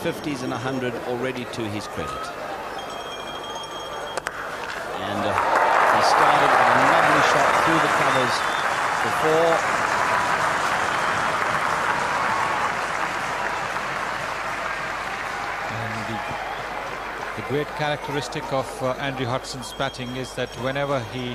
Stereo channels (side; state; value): both; identical; correlation 1.00